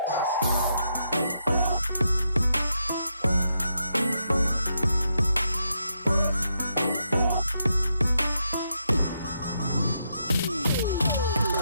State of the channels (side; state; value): both; inverted; correlation -0.81